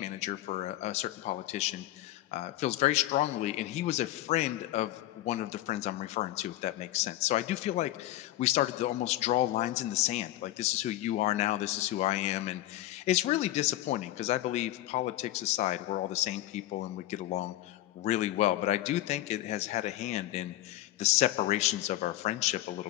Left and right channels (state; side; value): quieter; right; 15.1 dB